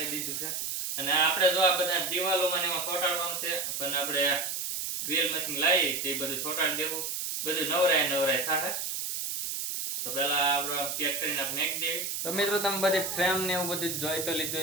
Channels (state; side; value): noise; right; hiss, 3 dB below the sound